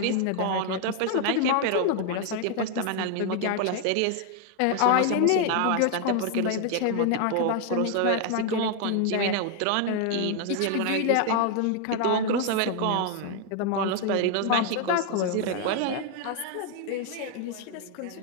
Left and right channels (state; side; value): different; both; correlation 0.00